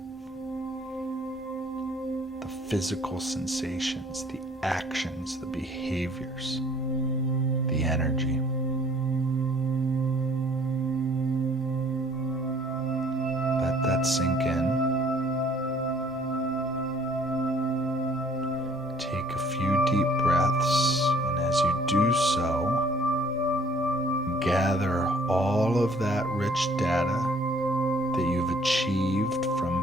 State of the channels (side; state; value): both; normal; correlation 0.58